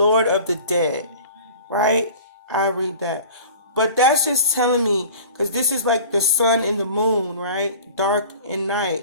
of the dead. Right? I read that. But that's just telling me, because this is like the sun and the moon, right? Dark and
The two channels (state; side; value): inverted; both; correlation -0.42